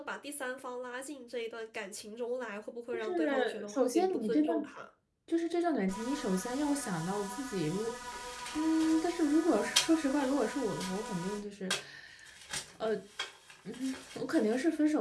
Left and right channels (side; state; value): both; identical; correlation 1.00